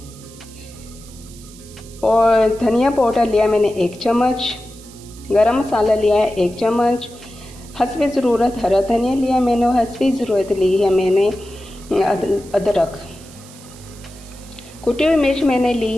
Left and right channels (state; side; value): noise; right; hiss, 21 dB below the sound